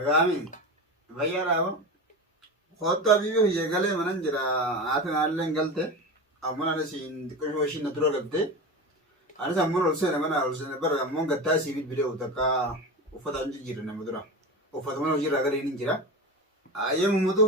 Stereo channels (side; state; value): both; normal; correlation 0.25